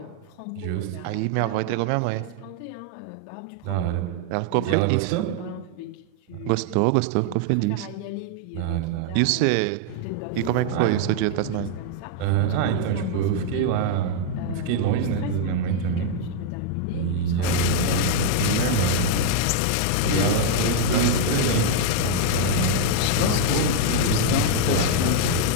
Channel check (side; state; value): both; different; correlation 0.00